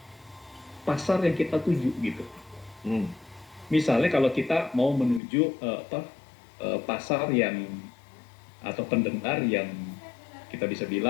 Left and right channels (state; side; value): drops out; right; at 5.2 s